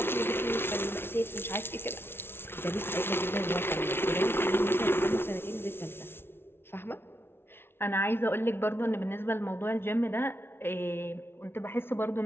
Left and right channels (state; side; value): late; right; 0.11 ms